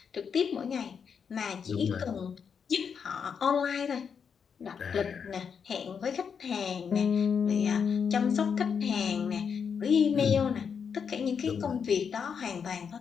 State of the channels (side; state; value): right; quieter; 6.7 dB